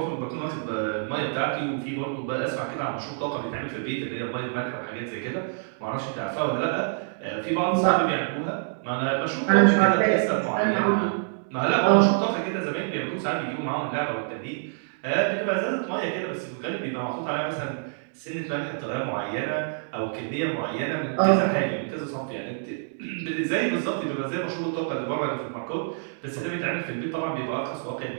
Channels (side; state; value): left; silent; digital silence